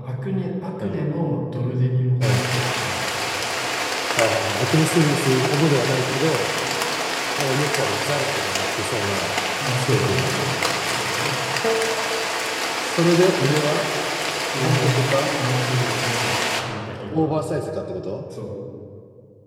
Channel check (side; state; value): both; identical; correlation 1.00